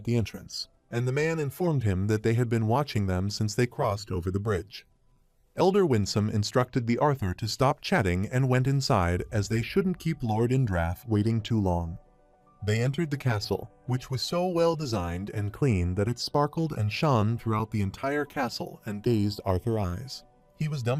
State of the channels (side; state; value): both; identical; correlation 1.00